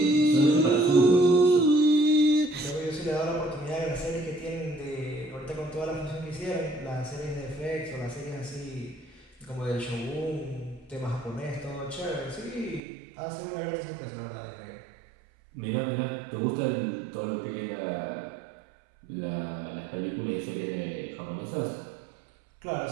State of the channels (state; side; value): drops out; left; at 12.8 s